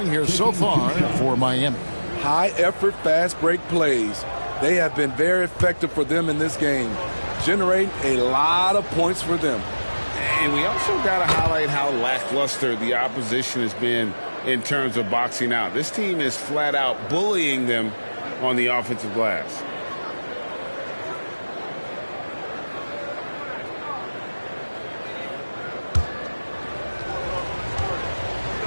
here so far for Miami. High effort, fast break plays. They have been very effective for them in this game, generating a lot of points for them. And we also got to highlight how lackluster the opposition has been in terms of boxing out. This team is flat out bullying them on the offensive glass.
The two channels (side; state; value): both; inverted; correlation -1.00